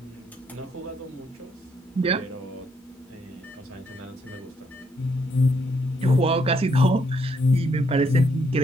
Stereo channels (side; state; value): both; normal; correlation 0.73